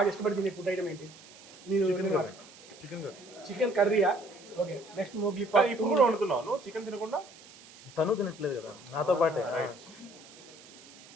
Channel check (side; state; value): right; noise; hiss, 21 dB below the sound